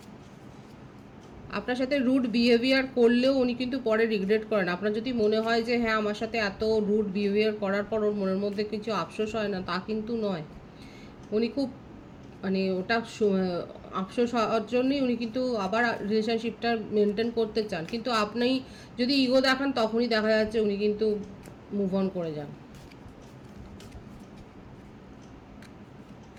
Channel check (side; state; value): both; identical; correlation 1.00